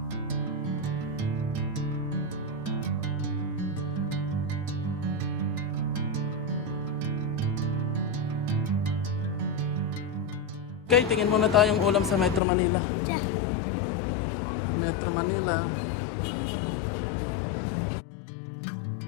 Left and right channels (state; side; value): drops out; right; at 12.4 s